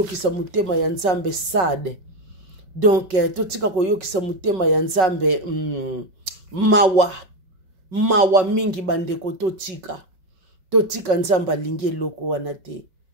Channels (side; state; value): left; late; 5.4 ms